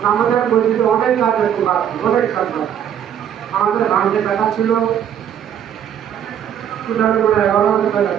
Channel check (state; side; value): quieter; left; 9.3 dB